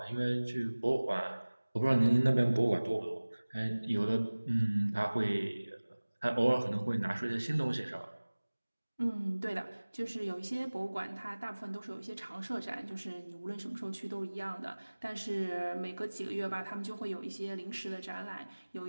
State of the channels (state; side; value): inverted; both; correlation -1.00